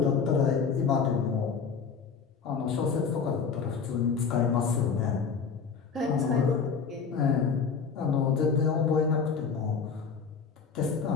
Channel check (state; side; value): quieter; right; 5.9 dB